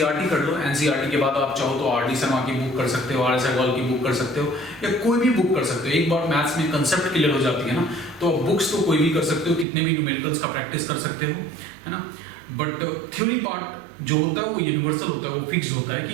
कर लो, एनसीईआरटी के बाद आप चाहो तो आर डी शर्मा की बुक कर सकते हो, आर एस अग्रवाल की बुक कर सकते हो, या कोई भी बुक कर सकते हो। एक बार मैथ्स में कंसेप्ट क्लियर हो जाती है ना, तो बुक्स तो कोई भी कर सकते हो, कितने भी न्यूमेरिकल्स का प्रैक्टिस कर सकते हो, है ना। बट थ्योरी पार्ट जो होता है वो यूनिवर्सल होता है, वो फिक्स होता है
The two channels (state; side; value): drops out; left; at 9.7 s